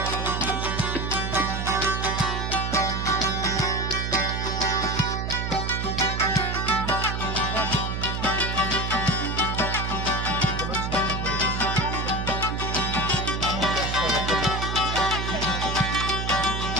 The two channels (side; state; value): right; noise; hum, 2 dB below the sound